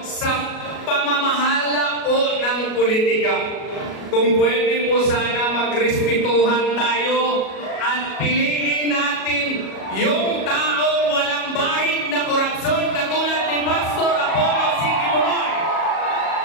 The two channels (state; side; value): late; right; 37 ms